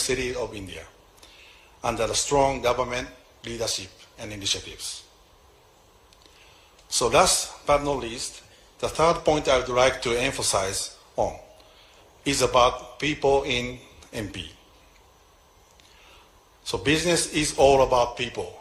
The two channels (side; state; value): both; identical; correlation 1.00